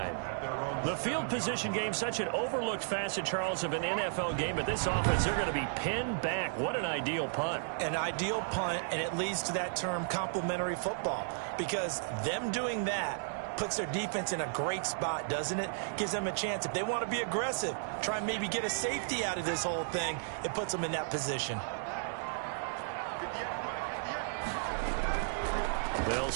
The field position game, such an overlooked facet, Charles, of an NFL game. But this offense, they're going to be pinned back. What an ideal punt. An ideal punt, and it leads to that term complementary football. Because them doing that puts their defense in a great spot, doesn't it? Gives them a chance. If they want to be aggressive, try and maybe get a safety out of this whole thing, it puts them in that position. They'll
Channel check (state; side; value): silent; left; digital silence